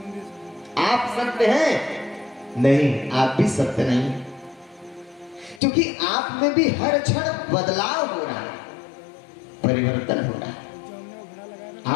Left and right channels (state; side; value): drops out; right; at 5.6 s